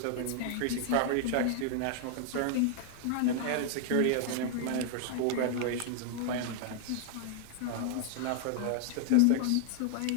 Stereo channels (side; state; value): both; different; correlation 0.00